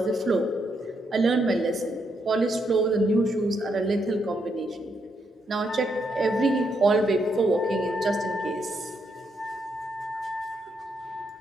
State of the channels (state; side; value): normal; both; correlation 0.78